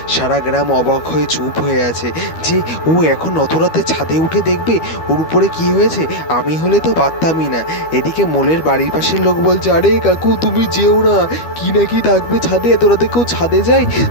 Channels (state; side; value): late; right; 12 ms